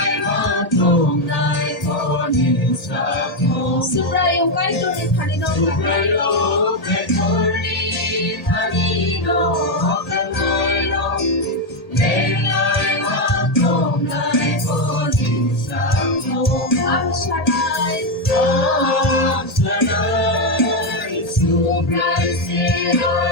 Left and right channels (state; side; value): late; right; 1.8 ms